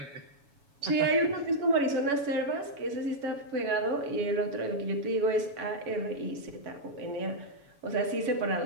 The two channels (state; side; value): late; left; 7.1 ms